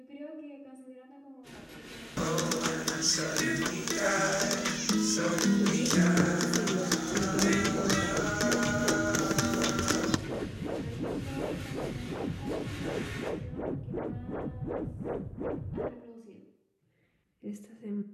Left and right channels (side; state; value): both; identical; correlation 1.00